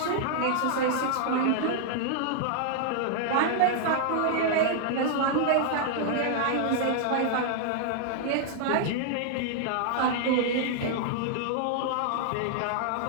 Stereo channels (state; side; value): different; both; correlation 0.00